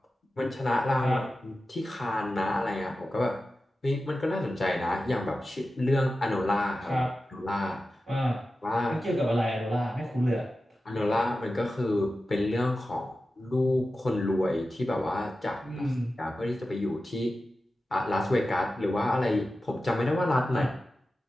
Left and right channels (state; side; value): normal; both; correlation 0.93